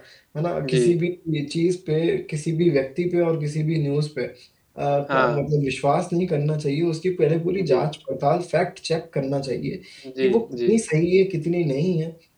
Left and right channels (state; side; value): identical; both; correlation 1.00